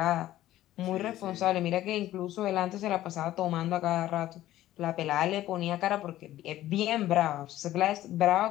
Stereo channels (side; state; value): right; quieter; 14.2 dB